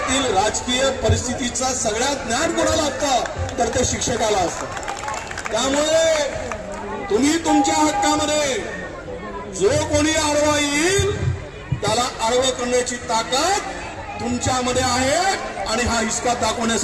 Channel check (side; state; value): both; identical; correlation 1.00